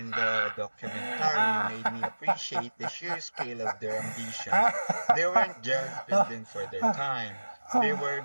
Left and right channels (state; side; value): inverted; both; correlation -1.00